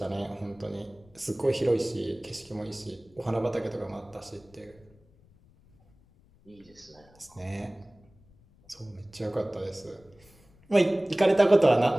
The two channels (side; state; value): left; noise; rumble, 29 dB below the sound